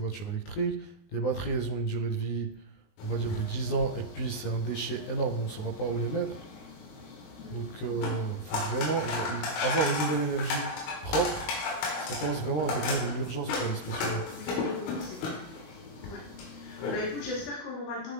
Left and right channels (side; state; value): right; late; 19 ms